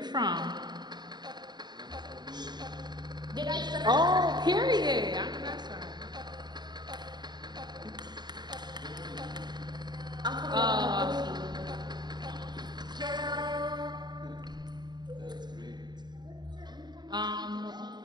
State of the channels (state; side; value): late; left; 0.21 ms